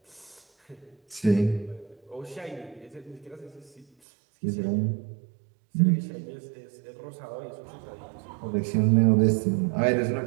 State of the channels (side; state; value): left; drops out; at 3.9 s